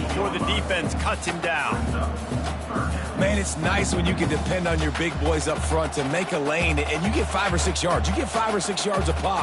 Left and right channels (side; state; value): both; identical; correlation 1.00